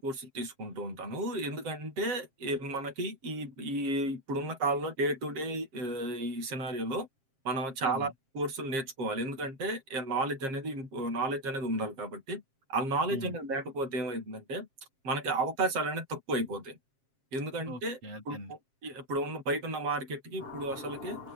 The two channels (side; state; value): left; late; 7.5 ms